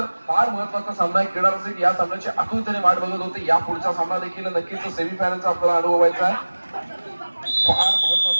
फार महत्वाचा सामना आहे क्रीडा रसिक या सामन्याची आतुरतेने वाट बघत होते या पुढचा सामना देखील नक्कीच सेमीफायनलचा आपल्याला अनुभवायचा आहे फार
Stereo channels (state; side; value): inverted; both; correlation -1.00